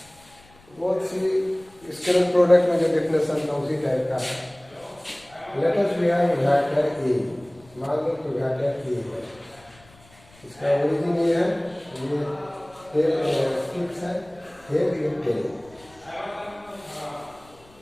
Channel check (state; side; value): noise; left; rumble, 27 dB below the sound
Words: बहुत सी स्केलर प्रोडक्ट में जो डेफिनेशन था उसी टाइप का है। Let us we have vector A, मान लो कि वेक्टर ए है, इसका ओरिजिन ये है, ये फिक्स है, हेड ये टेल,